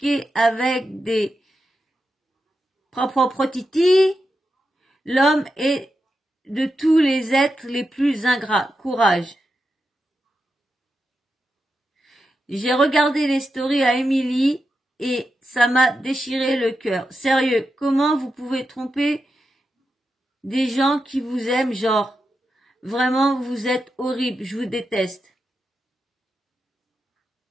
avec des propres titis. L'homme est de tous les êtres les plus ingrats. Courage. J'ai regardé les stories à Émilie et ça m'a déchiré le cœur. Sérieux, comment vous pouvez tromper des gens qui vous aiment, genre, vraiment, vous êtes horrible, je vous déteste.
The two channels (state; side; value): normal; both; correlation 0.88